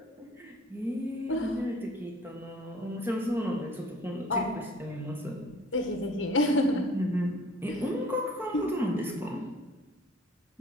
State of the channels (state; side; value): normal; both; correlation 0.52